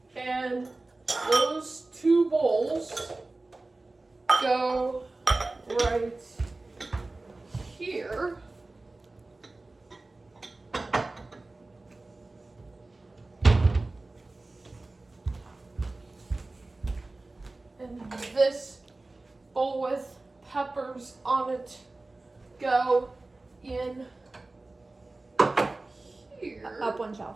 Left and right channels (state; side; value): quieter; left; 3.1 dB